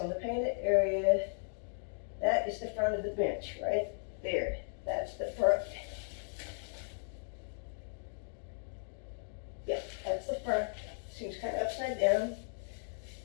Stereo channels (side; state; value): right; silent; digital silence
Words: the painted area, that is the front of the bench, right there. That's the front. Yep, that's the front. Seems kind of upside down.